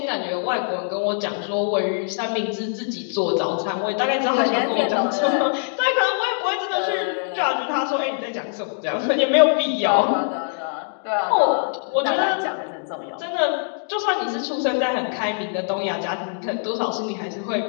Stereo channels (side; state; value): right; silent; digital silence